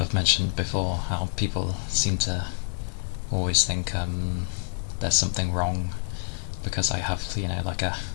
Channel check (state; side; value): silent; right; digital silence